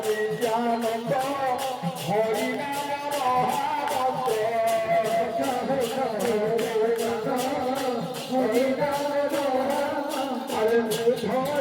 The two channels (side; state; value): both; identical; correlation 1.00